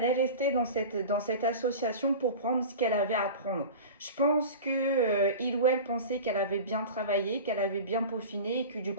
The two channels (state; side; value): inverted; both; correlation -0.32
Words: est restée dans cette association pour prendre ce qu'elle avait à prendre. Je pense que il ou elle pensait qu'elle avait bien travaillé, qu'elle avait bien peaufiné et que du